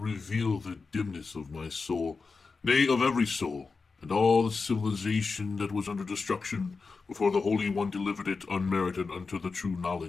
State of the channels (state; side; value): quieter; right; 4.5 dB